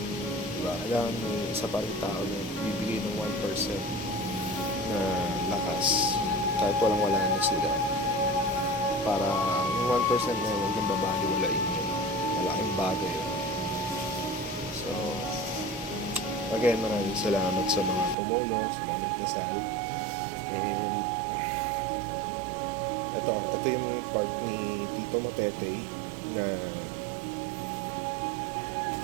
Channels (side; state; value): left; drops out; at 18.2 s